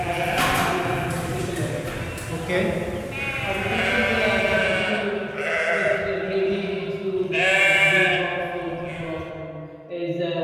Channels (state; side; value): identical; both; correlation 1.00